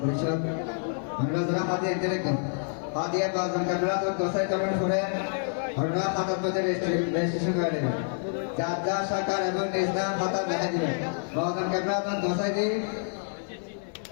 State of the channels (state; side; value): silent; right; 58 dB below the other